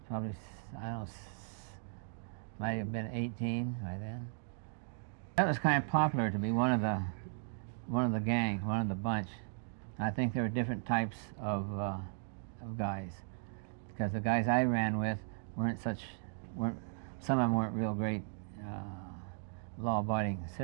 probably, I don't know, might have been 18 by then. That was kind of popular to be one of the gang, one of the bunch. I think there were different types of guys, because the guys I ran with weren't some of them weren't real great law-abiding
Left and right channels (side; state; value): left; silent; digital silence